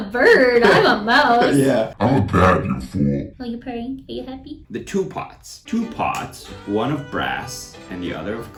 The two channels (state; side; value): identical; both; correlation 1.00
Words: bird. I'm a mouse. Yeah. I'm a bat, you fool. Are you purring? Are you happy? The two pots. Two pots, one of brass and the other of